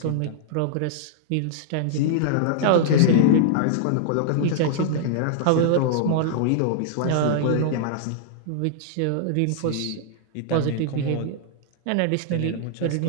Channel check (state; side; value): different; both; correlation -0.01